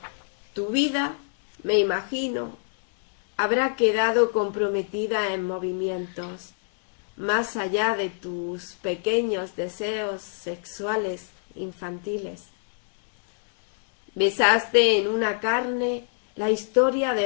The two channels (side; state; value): right; silent; 61 dB below the other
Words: Tu vida, me imagino, habrá quedado comprometida en movimientos, más allá de tus pequeños deseos sexuales infantiles. Besaste en una carne la historia